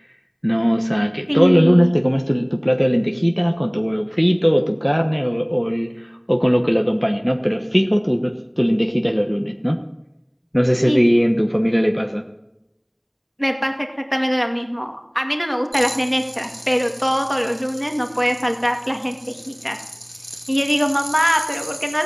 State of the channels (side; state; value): both; identical; correlation 1.00